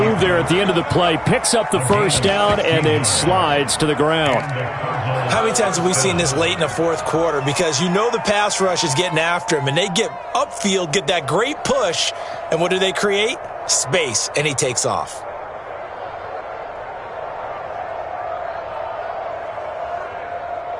there at the end of the play. Picks up the first down and then slides to the ground. How many times have we seen this late in the fourth quarter? Because you know the pass rush is getting after him, and they get upfield, get that great push, and what do they create? Space, and he takes off.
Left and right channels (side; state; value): both; identical; correlation 1.00